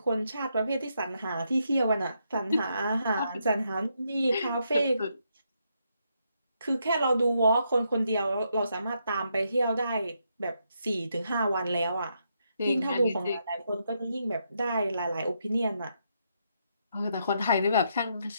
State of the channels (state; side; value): inverted; both; correlation -0.78